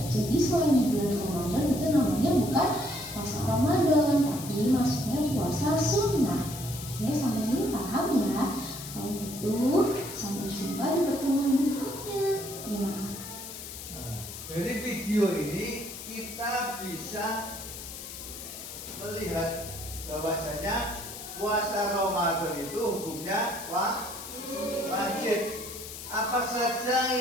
Jadi selain di bulan Ramadan itu namanya bukan puasa Ramadan, tapi maksudnya puasa sunnah. Oke, sampai sini paham ya? Kalau gitu, sampai jumpa di pertemuan berikutnya. Terima kasih. Dari video ini kita bisa melihat bahwasanya puasa Ramadan itu hukumnya wajib. Apa saja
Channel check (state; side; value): noise; left; hiss, 11 dB below the sound